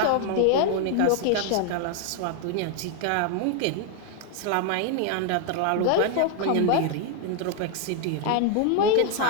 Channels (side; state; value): both; different; correlation 0.00